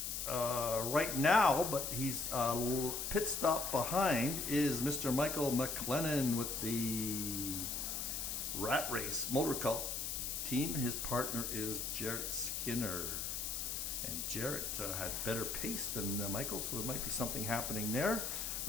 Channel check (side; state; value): left; noise; hiss, 3 dB below the sound